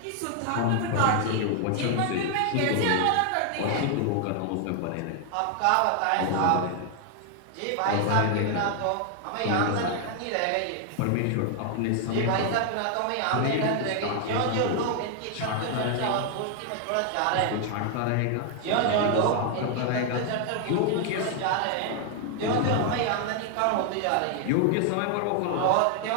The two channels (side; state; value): both; different; correlation 0.00